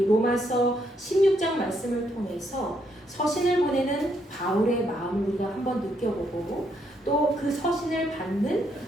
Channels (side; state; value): both; normal; correlation 0.75